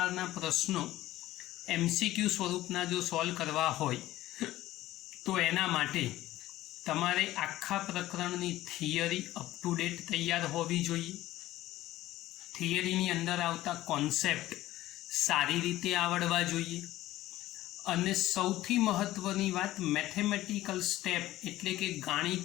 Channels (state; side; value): quieter; right; 15.6 dB